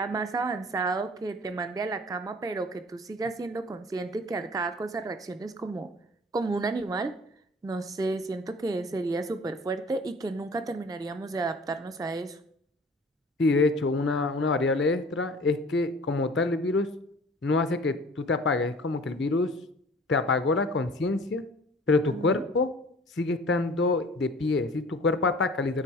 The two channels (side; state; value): both; normal; correlation 0.47